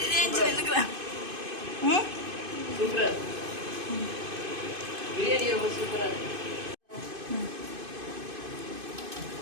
சூப்பரா பிரியாணி ரொம்ப சூப்பரா இருக்கு.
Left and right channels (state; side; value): late; left; 2.5 ms